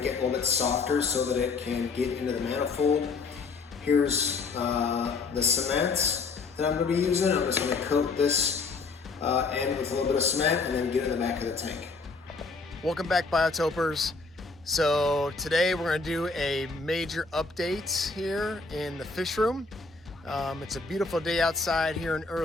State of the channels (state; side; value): quieter; right; 4.1 dB